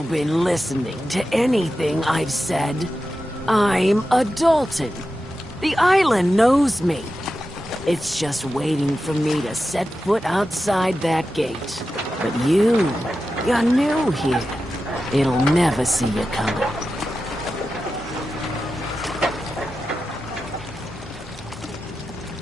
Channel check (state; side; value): normal; both; correlation 0.91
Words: been listening to anything I've said? I'm a Dalton. The island knows me. It's just waiting for me to set foot outside that gate. But you're new here. It'll never see you coming.